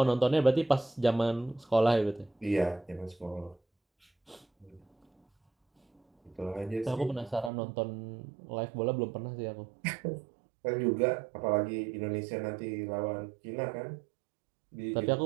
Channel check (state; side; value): drops out; left; at 7.5 s